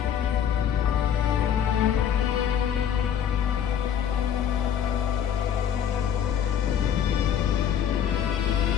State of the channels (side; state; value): right; quieter; 9.0 dB